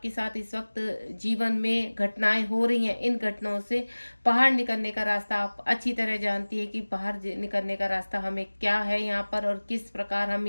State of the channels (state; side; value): inverted; both; correlation -1.00